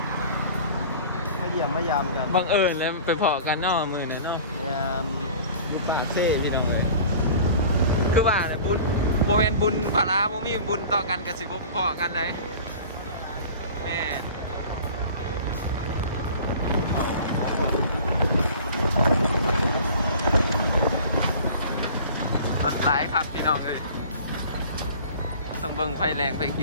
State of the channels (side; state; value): both; inverted; correlation -0.42